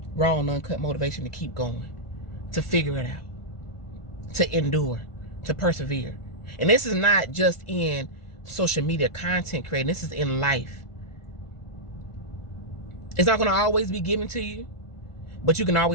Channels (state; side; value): late; right; 1.4 ms